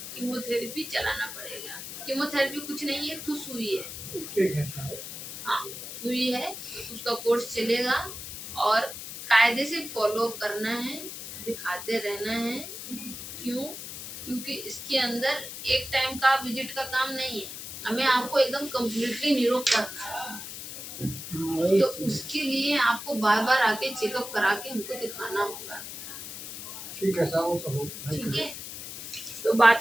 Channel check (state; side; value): noise; left; hiss, 9 dB below the sound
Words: कीमोथेरेपी चलाना पड़ेगा। कीमोथेरेपी कुछ नहीं है, तो सुई है। ठीक है। हाँ, सुई है, उसका कोर्स चलेगा और कायदे से फॉलो करना है, दिखाते रहना है। क्यों? क्योंकि इसके अंदर एक टाइम का विजिट का काम नहीं है, हमें आपको एकदम कम्प्लीटली निरोग करना है। तो उसके लिए आपको बार बार आके चेकअप करा के हमको दिखाना होगा। ठीक है साहब, ठीक है, तो